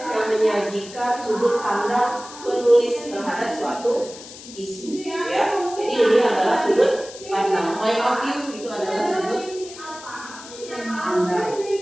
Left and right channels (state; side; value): noise; left; hiss, 16 dB below the sound